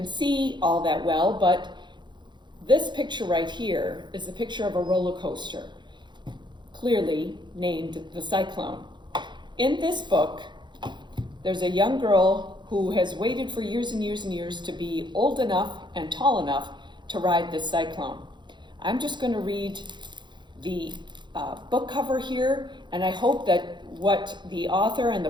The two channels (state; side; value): late; left; 0.22 ms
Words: see all that well, but this picture right here is the picture of a roller coaster, clearly named the Cyclone. In this book, there's a young girl who has waited for years and years and years to be old enough and tall enough to ride this Cyclone. I'm just going to read the book cover here, and I hope that what the author and the